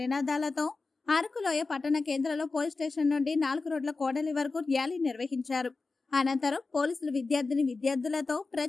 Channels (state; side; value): quieter; right; 3.9 dB